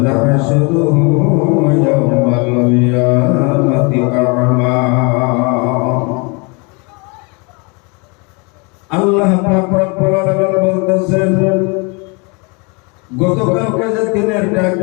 يوم القيامة أعمى আল্লাহ পাক রব্বুল আলামিন বলতেছেন গতকালকে যে দিনের ডাক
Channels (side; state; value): right; quieter; 30.9 dB